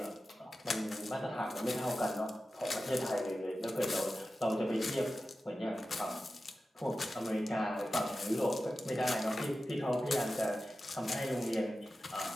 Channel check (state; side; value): normal; both; correlation 0.93